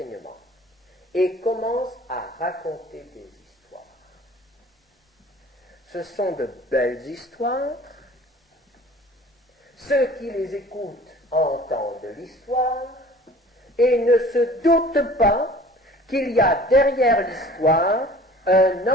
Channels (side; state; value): both; normal; correlation 0.47